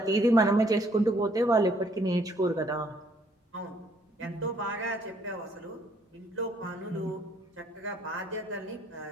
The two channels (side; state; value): both; normal; correlation 0.65